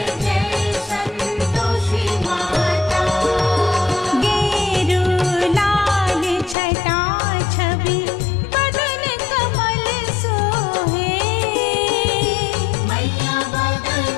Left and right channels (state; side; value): drops out; right; at 6.6 s